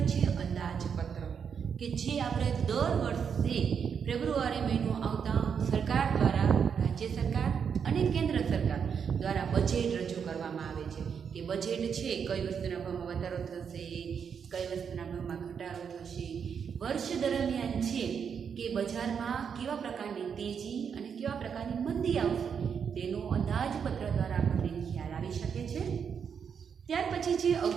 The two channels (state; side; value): quieter; left; 7.0 dB